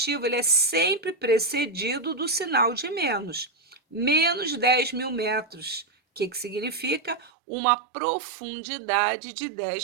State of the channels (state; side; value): drops out; left; at 7.3 s